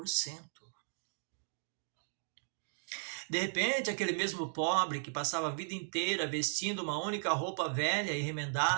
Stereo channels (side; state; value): left; silent; digital silence